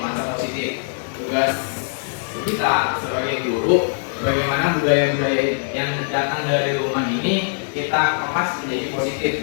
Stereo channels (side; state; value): right; silent; digital silence